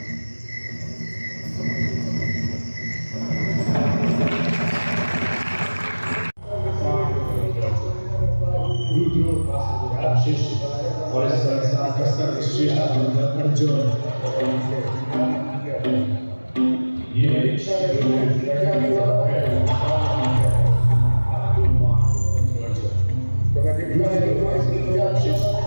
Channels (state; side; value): inverted; both; correlation -1.00